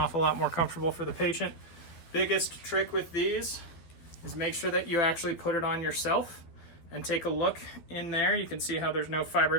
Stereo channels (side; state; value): right; late; 12 ms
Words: lot more comfortable for the patient. Biggest trick with these is make sure that you actually put it on yourself and take a look in there. You can see how there's no